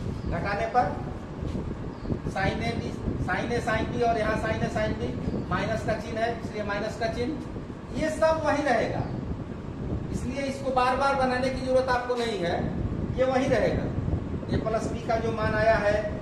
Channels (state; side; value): identical; both; correlation 1.00